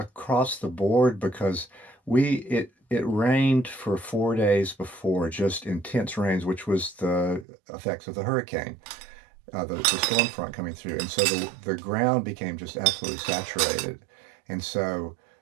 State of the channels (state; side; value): drops out; left; at 7.5 s